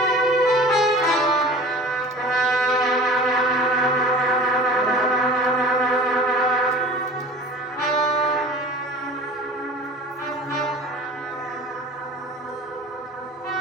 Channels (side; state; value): both; normal; correlation 0.41